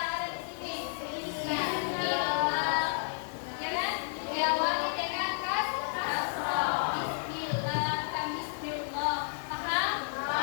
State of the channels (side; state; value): right; silent; digital silence